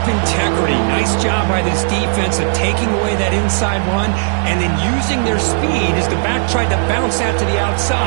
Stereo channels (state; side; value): silent; left; digital silence